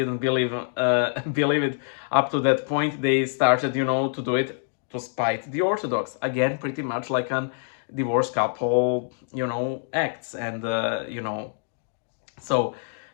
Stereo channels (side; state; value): right; silent; digital silence